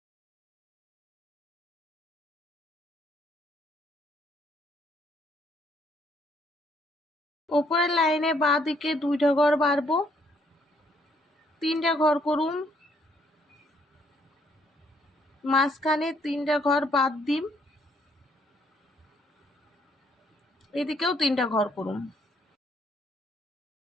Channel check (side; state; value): both; normal; correlation 0.68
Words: উপরের লাইনে বাঁ দিকে দুইটা ঘর বাড়বো, 3টা ঘর করুম। মাঝখানে 3টা ঘর বাদ দিম, এদিকেও 3টা ঘর করুম।